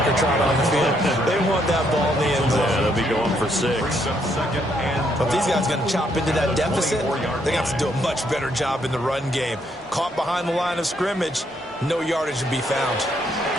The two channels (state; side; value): normal; both; correlation 0.73